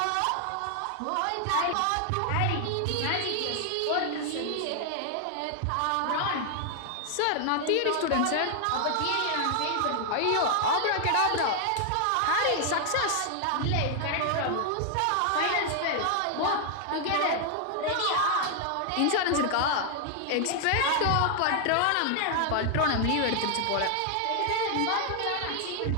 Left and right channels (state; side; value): different; both; correlation 0.00